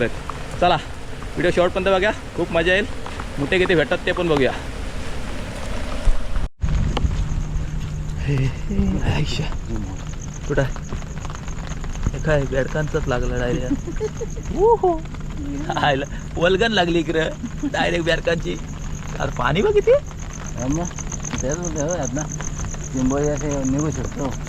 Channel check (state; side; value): identical; both; correlation 1.00